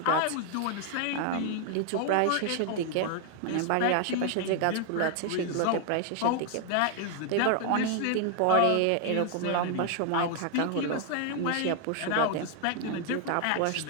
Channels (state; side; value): different; both; correlation 0.00